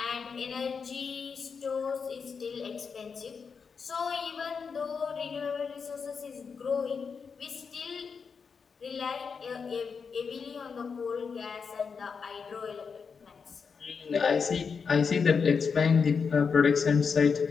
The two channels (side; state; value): right; quieter; 5.7 dB